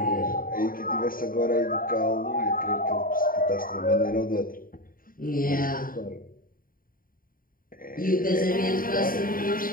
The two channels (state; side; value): late; right; 0.41 ms